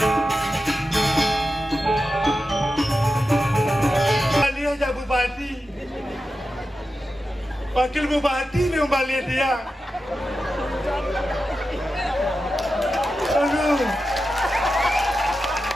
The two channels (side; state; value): both; normal; correlation 0.91